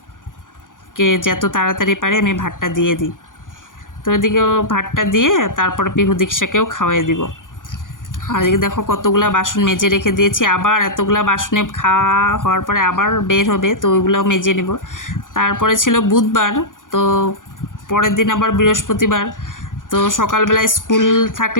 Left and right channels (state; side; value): late; right; 0.88 ms